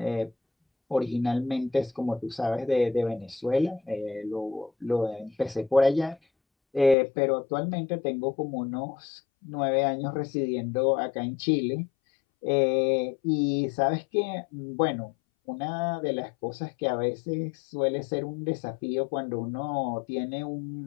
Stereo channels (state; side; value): drops out; right; at 7.0 s